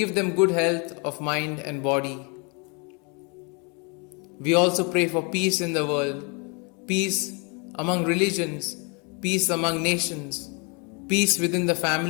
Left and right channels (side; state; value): right; quieter; 33.3 dB